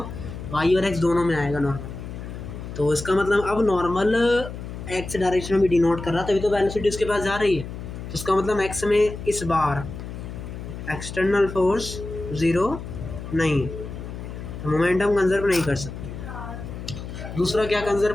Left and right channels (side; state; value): left; noise; hum, 9 dB below the sound